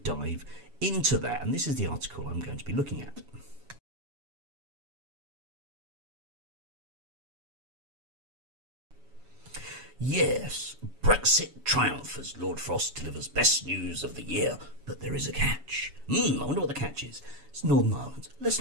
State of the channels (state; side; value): late; left; 7.2 ms